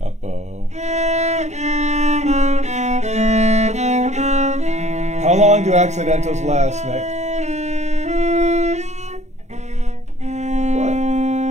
Up-bow. How long do accidentals last, Nick? What?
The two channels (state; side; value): late; left; 0.33 ms